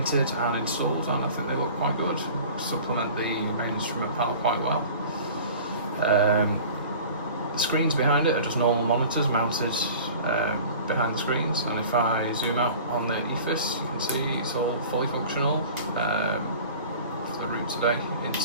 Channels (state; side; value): inverted; both; correlation -0.42